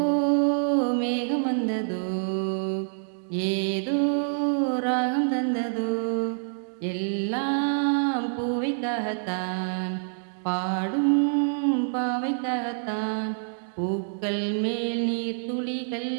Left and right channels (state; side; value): silent; left; digital silence